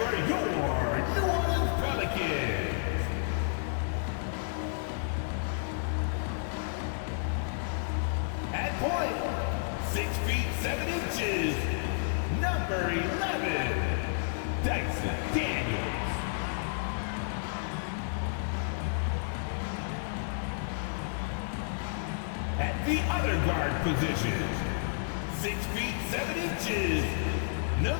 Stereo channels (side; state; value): right; silent; 57 dB below the other